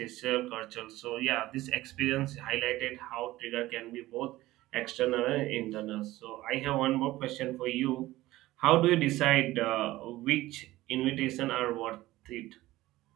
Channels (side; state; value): left; quieter; 17.1 dB